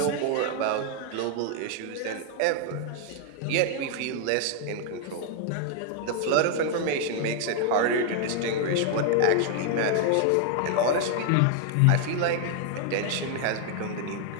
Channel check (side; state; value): both; different; correlation 0.00